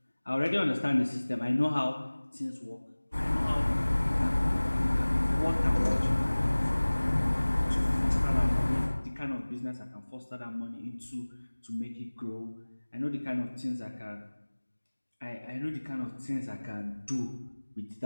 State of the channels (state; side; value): inverted; both; correlation -1.00